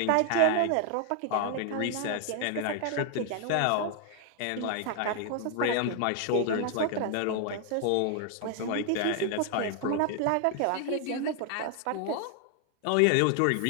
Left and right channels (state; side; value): different; both; correlation 0.00